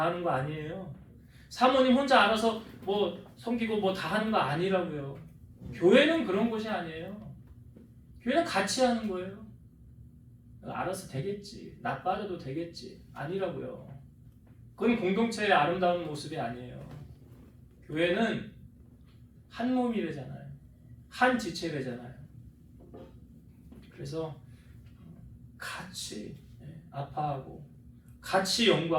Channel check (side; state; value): both; identical; correlation 1.00